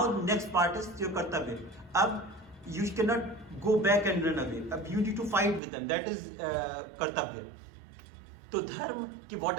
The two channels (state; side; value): drops out; left; at 5.6 s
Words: next part is your kartavya. Ab you cannot go back and run away. Ab you need to fight with them. That is kartavya. So dharma,